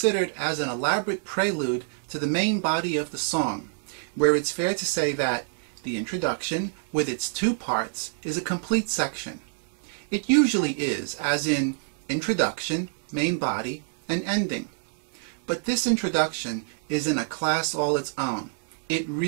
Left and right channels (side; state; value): left; silent; digital silence